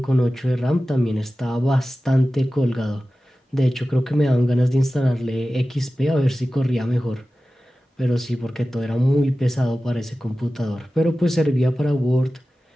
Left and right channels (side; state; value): both; normal; correlation 0.95